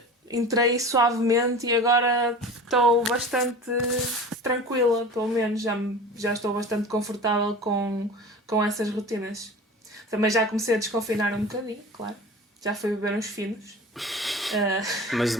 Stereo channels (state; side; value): normal; both; correlation 0.37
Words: entrei suavemente e agora estou bastante tranquila, pelo menos já estou bastante confortável com essas rotinas. Também já comecei a desconfinar um bocadinho, claro. Já fui beber uns finos. Ah, Mas de